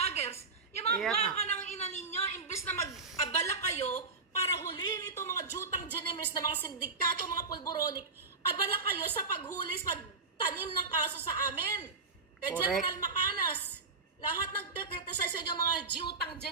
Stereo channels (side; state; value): left; quieter; 4.2 dB